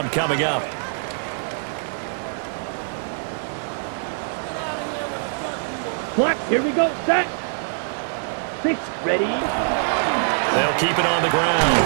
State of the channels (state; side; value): silent; left; digital silence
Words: coming up. Clock, here we go. Set. 6, ready. They'll keep it on the